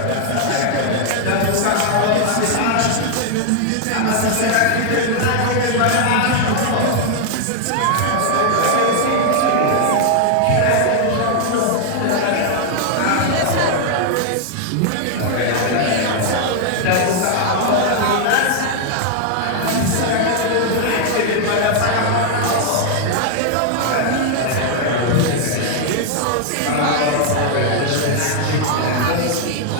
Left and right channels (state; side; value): different; both; correlation 0.00